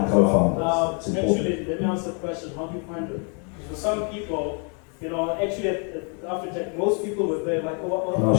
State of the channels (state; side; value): quieter; right; 38.5 dB